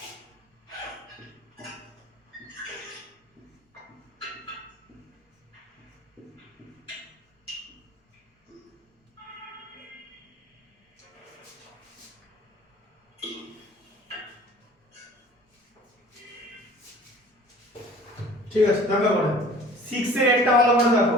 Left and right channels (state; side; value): normal; both; correlation 0.47